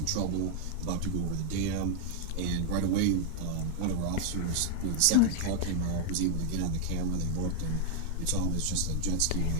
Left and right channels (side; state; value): both; different; correlation 0.00